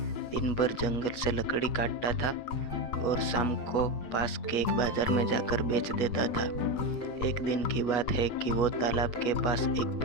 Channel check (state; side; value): late; right; 8.2 ms